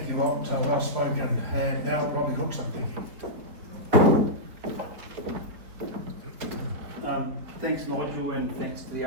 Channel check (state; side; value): late; left; 4.1 ms